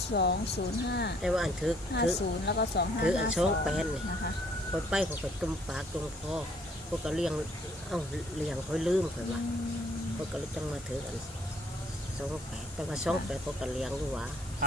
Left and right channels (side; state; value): both; normal; correlation 0.62